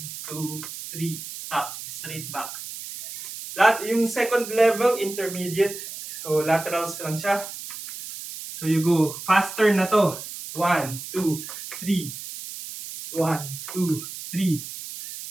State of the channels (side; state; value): right; noise; hiss, 10 dB below the sound